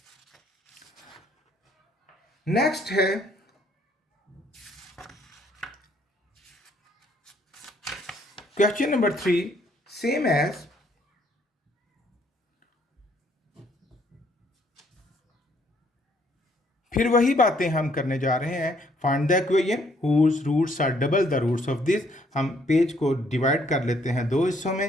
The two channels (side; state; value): both; normal; correlation 0.66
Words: नेक्स्ट है क्वेश्चन नंबर 3, सेम एज फिर वही बातें हम करने जा रहे हैं। Find the equation whose roots are double the roots of this. हम पेज को डिवाइड कर लेते हैं दो हिस्सों में